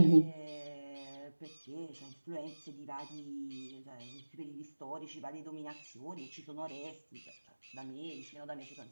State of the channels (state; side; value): inverted; both; correlation -1.00